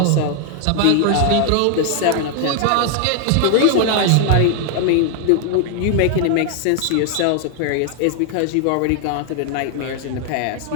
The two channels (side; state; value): both; different; correlation 0.00